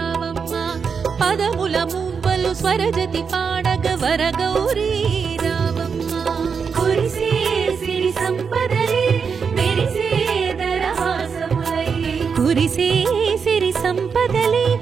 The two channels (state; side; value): quieter; left; 6.0 dB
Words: పదముల మూవలు స్వరజతి పాడగ వరగౌరీ రావమ్మ కురిసే సిరి సంపదలే మెరిసే దరహాసములై కురిసే సిరి సంపదలే